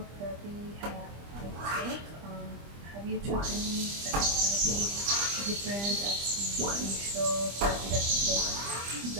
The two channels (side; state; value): left; late; 25 ms